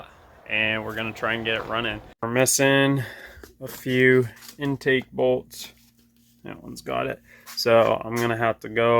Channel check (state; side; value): identical; both; correlation 1.00